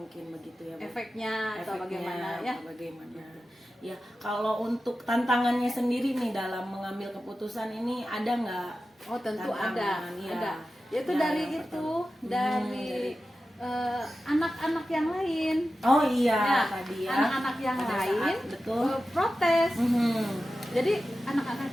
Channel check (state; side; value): normal; both; correlation 0.93